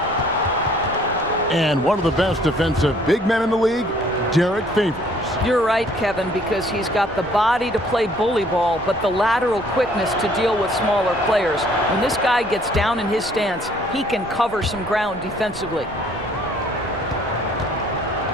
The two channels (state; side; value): normal; both; correlation 0.59